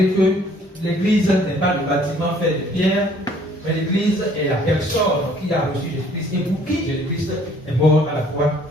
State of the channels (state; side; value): normal; both; correlation 0.59